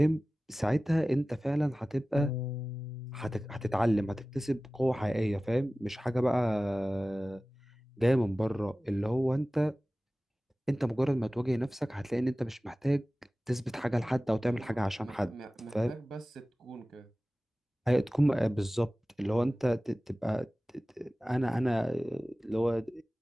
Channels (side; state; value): both; normal; correlation 0.97